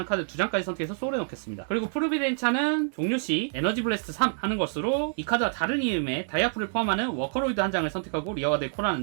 카드 2장까지 선택해서 소울에 넣겠습니다. 그리고 프로비덴차는 종료 시 에너지 블래스트 3 하는 것으로 이 카드와 다른 이름의 다이아풀을 포함하는 워커로이드 한 장을 선택하고 리어가드에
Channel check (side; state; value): left; silent; 60 dB below the other